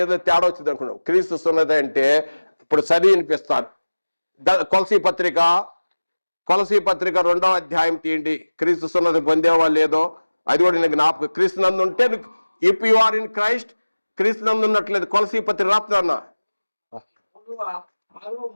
ఏదో తేడా వచ్చింది అనుకున్నావు. క్రీస్తు సున్నతి అంటే ఇప్పుడు చదివి వినిపిస్తాను. కొలసీ పత్రిక 2వ అధ్యాయం తీయండి. క్రీస్తు సున్నతి పొందేవాళ్ళు లేదో అది కూడా నేను జ్ఞాపకం. క్రీస్తు నందు ఉంటే if you are in Christ, క్రీస్తు నందు ఉన్నట్లేదు. కొలసీ పత్రిక రాస్తున్నా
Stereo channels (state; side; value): inverted; both; correlation -1.00